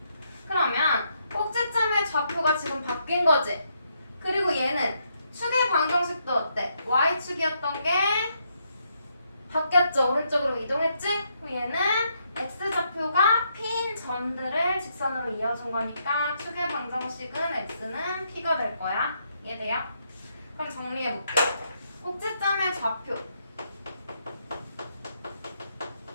그러면 꼭지점의 좌표가 지금 바뀐 거지. 그리고 얘는 축의 방정식도 어때? y축이었던 게 바뀌었죠. 오른쪽으로 이동했지? 그럼 얘는 x좌표가 p인 점들을 직선으로 이어준 거니까 축의 방정식은 x는 p가 될 거야. 이해돼요? 그럼 정리해볼게. 꼭지점의 좌표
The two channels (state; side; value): inverted; both; correlation -0.77